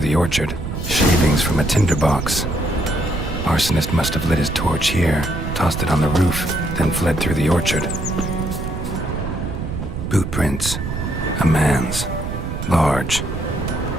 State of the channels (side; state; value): right; noise; rumble, 5 dB below the sound